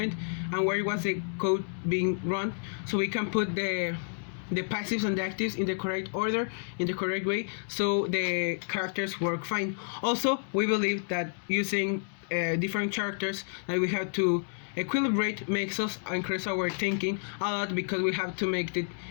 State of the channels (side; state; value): right; silent; digital silence